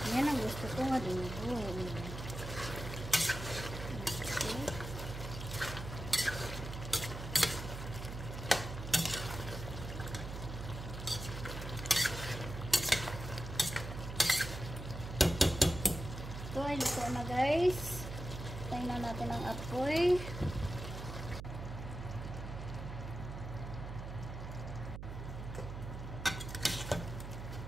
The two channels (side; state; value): right; noise; hum, 8 dB below the sound